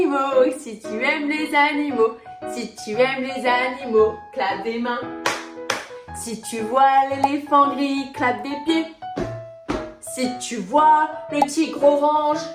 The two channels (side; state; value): both; identical; correlation 1.00